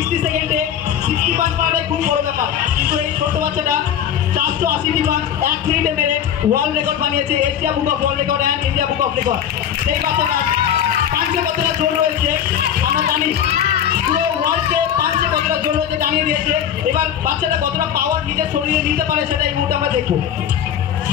সেকেন্ডে 60 পাস করাটাই খুব বড় ব্যাপার, কিন্তু এই ছোট্ট বাচ্চাটা 480টি পাস 1 মিনিটে মেরে ওয়ার্ল্ড রেকর্ড বানিয়েছে, Asia book of world record and India book of record. সেই বাচ্চাটা পাঞ্চে কতটা জোর রয়েছে আমরা জানি, পুরো ওয়ার্ল্ডকে পাঞ্চে কতটা জোর রয়েছে জানিয়ে দিয়েছে। এবার বাচ্চাটা কতটা পাওয়ার নিজের শরীরে নিতে পারে সেটা এই মুহূর্তে আমরা দেখবো।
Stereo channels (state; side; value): quieter; right; 9.3 dB